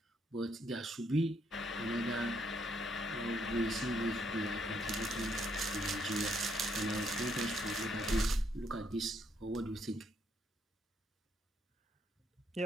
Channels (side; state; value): both; normal; correlation 0.73